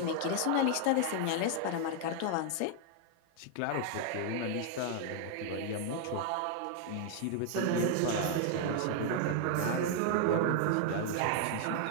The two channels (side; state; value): both; different; correlation 0.00